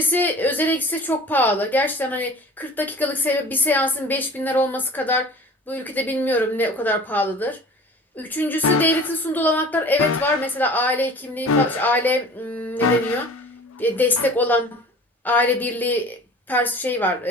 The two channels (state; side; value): normal; both; correlation 0.43